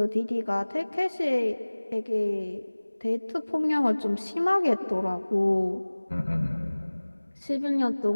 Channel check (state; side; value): inverted; both; correlation -1.00